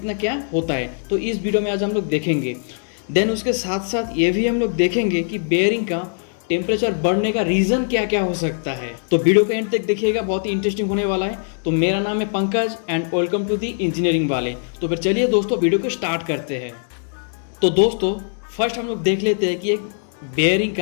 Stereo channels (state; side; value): silent; right; digital silence